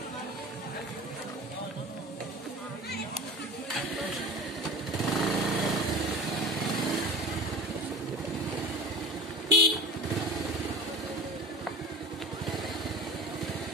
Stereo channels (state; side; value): normal; both; correlation 0.36